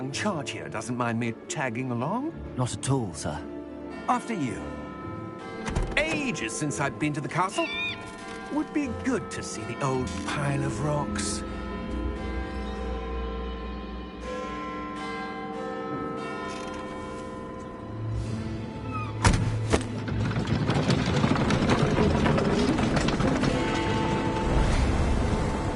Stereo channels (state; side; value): identical; both; correlation 1.00